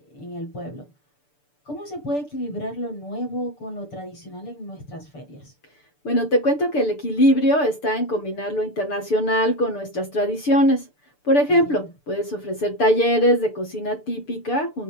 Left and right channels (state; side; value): late; right; 6.8 ms